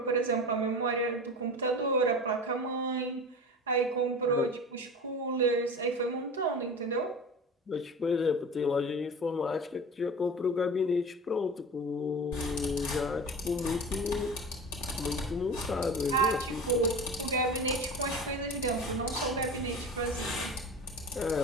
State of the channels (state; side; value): normal; both; correlation 0.33